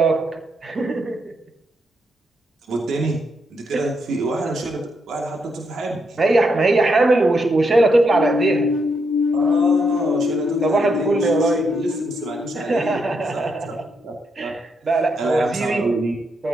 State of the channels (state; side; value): normal; both; correlation 0.79